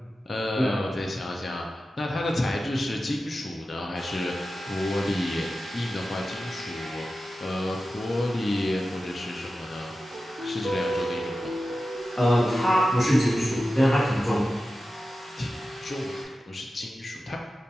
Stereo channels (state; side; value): normal; both; correlation 0.93